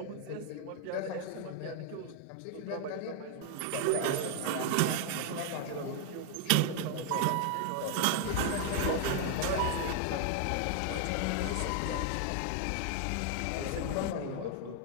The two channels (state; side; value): different; both; correlation 0.00